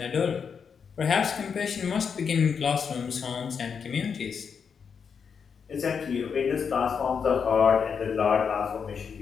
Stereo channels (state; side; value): quieter; right; 6.4 dB